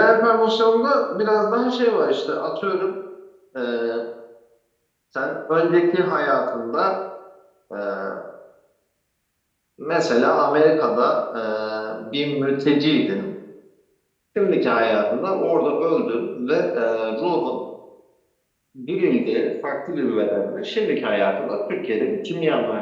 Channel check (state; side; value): identical; both; correlation 1.00